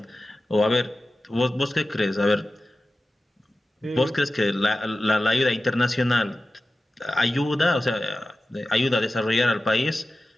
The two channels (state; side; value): normal; both; correlation 0.95